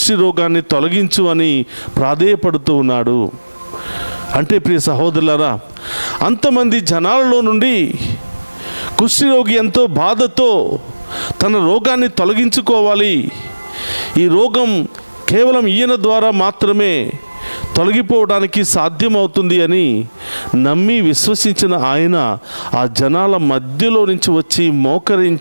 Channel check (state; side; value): inverted; both; correlation -1.00